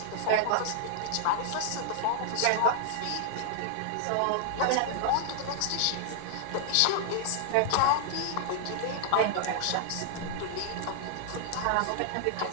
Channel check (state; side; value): different; both; correlation -0.01